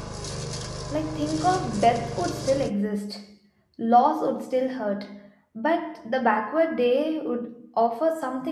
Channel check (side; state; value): both; identical; correlation 1.00